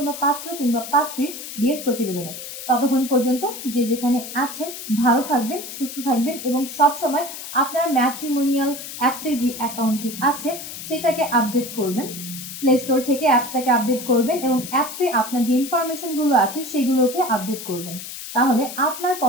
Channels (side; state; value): left; noise; hiss, 10 dB below the sound